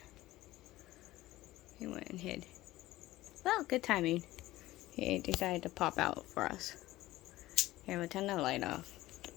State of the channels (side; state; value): right; quieter; 16.9 dB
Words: He went and hid. Well, good timing. He decided to pop out for us. Here, we'll turn the light off.